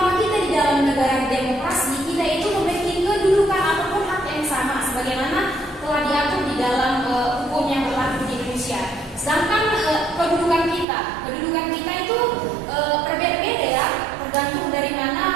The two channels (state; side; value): drops out; left; at 10.9 s